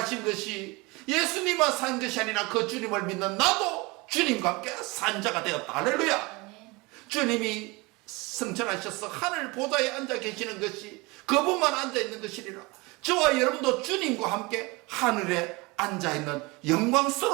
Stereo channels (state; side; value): quieter; left; 24.9 dB